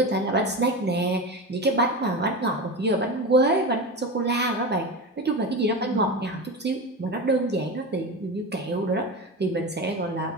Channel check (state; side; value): normal; both; correlation 0.24